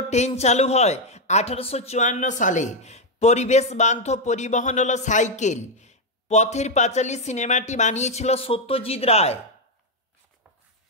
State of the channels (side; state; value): both; normal; correlation 0.02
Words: ট্রেন চালু হয় 1854 সালে। পরিবেশ বান্ধব পরিবহন হলো সাইকেল। পথের পাঁচালী সিনেমাটি বানিয়েছিল সত্যজিৎ রায়।